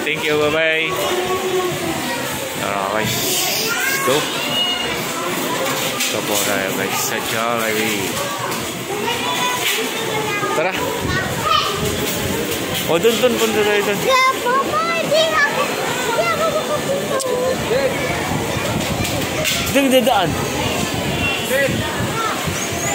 you, bye-bye! Tara guys, let's go! Ito po tayo guys sa Jollibee. Tara! O, dun, punta tayo dun. Dun, dadaan.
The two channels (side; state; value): both; identical; correlation 1.00